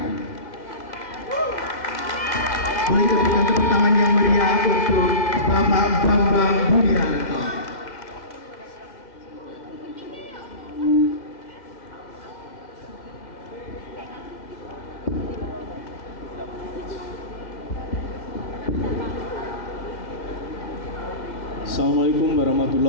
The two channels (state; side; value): late; right; 2.0 ms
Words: Boleh berikan tepuk tangan yang meriah untuk Bapak Bambang Budianto. Assalamualaikum